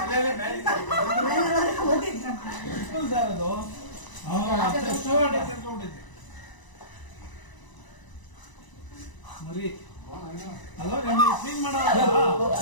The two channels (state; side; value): late; right; 1.0 ms